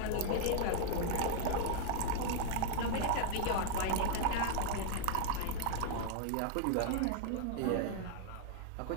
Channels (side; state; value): both; different; correlation 0.00